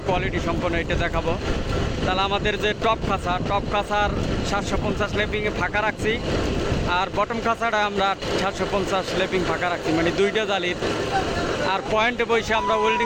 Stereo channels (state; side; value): identical; both; correlation 1.00